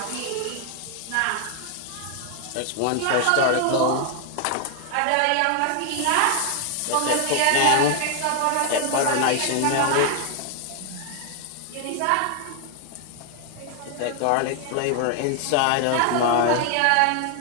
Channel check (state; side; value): different; both; correlation 0.00